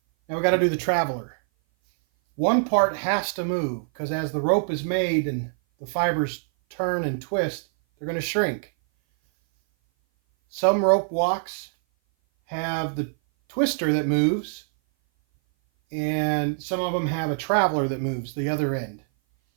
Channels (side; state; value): left; silent; 58 dB below the other